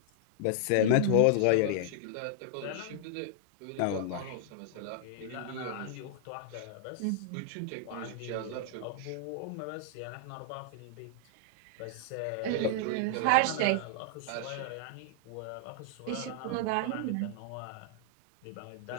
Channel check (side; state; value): both; different; correlation -0.01